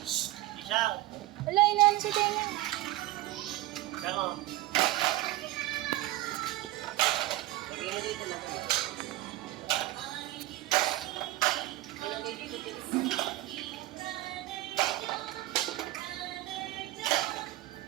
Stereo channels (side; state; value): left; quieter; 17.1 dB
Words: Isang. Hala, inaano sa tenga. Isang o. Lagay mo dito lang. Ilagay dito dito.